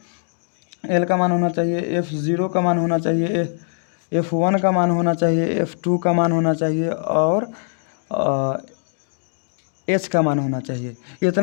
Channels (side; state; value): right; silent; digital silence